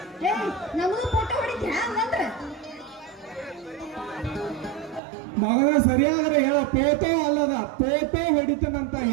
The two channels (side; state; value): left; drops out; at 5.0 s